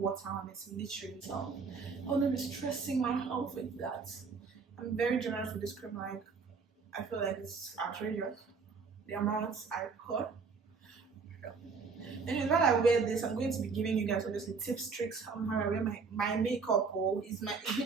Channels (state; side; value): quieter; left; 5.0 dB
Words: on it, literally. So I wouldn't be stressing my health with that. I'm very generous with this cream. Like I feel like it's outrageous the amounts I put. And while I wear this, I'm going to be giving you guys obviously tips, tricks on how I wear my makeup. Oh, it's me